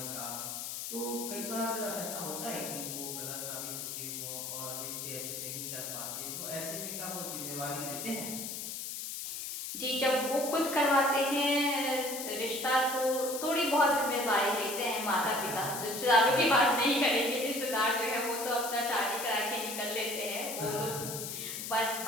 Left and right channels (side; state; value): left; noise; hiss, 6 dB below the sound